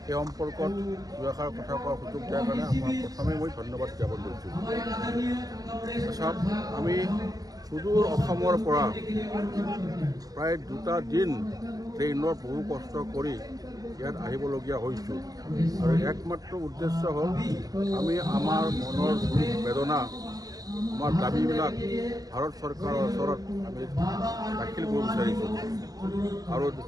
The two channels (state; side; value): late; left; 0.18 ms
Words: সেই সম্পৰ্কত দুআষাৰ কথা কোৱাৰ সুযোগ দিয়াৰ কাৰণে আমাৰ প্ৰথমে মই ধন্যবাদ জ্ঞাপন কৰিছোঁ। চাওক, আমি সুদূৰ অসমৰ পৰা প্ৰায় 2টা দিন ট্ৰেইনত বহু কষ্ট কৰি ইয়াত আহিবলগীয়া হৈছোঁ আৰু একমাত্ৰ উদ্দেশ্য হ'ল আমি আমাৰ মনৰ দুখ বেদনা আমাৰ দাবীবিলাক ভাৰত চৰকাৰৰ ওচৰত আমি দাখিল কৰিব বিচাৰিছোঁ। আৰু